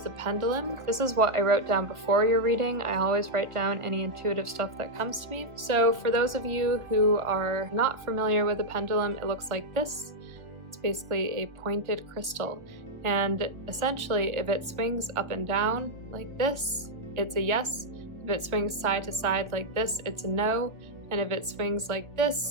pendulum. This is what I wrote down before your reading. I always write down any intuitive stuff that comes to me. So for those of you who are not familiar with the pendulum, it looks like this. It's basically a pointed crystal. And essentially, if it swings up and down like this, it's a yes. If it swings side to side like this, it's a no. And if it swings like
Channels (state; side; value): late; left; 1.4 ms